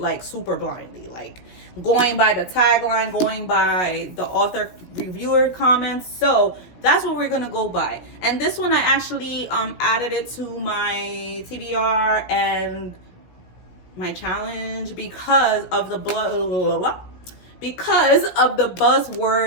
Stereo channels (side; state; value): right; late; 17 ms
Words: like super blindly, like going by the tagline, going by the author reviewer comments. So that's what we're gonna go by. And this one I actually added it to my TBR and my challenge because of the buzzword